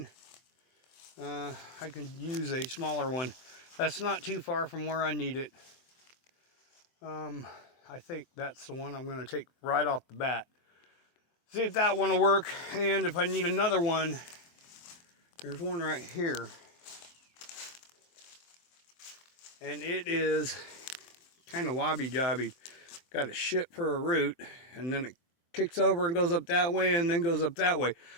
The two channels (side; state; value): right; late; 23 ms